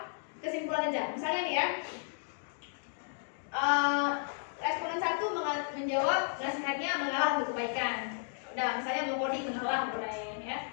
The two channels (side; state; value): right; silent; digital silence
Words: kesimpulan aja. Misalnya nih ya, responden 1 menjawab nasihatnya mengalah untuk kebaikan. Udah, misalnya mengcoding mengalah boleh ya.